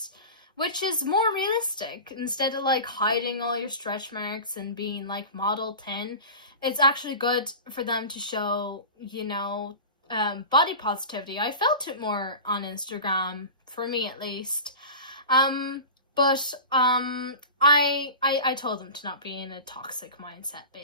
is more realistic. Instead of like hiding all your stretch marks and being like model 10, it's actually good for them to show, you know, body positivity. I felt it more on Instagram, for me at least. But I told them to not be in a toxic mindset,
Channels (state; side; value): inverted; both; correlation -0.32